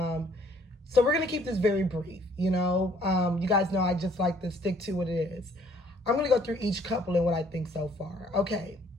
So we're going to keep this very brief. You guys know I just like to stick to what it is. I'm going to go through each couple and what I think so far. Okay,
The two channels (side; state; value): both; normal; correlation 0.61